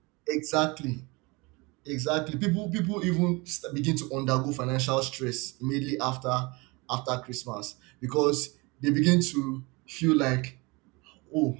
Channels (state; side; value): quieter; left; 25.9 dB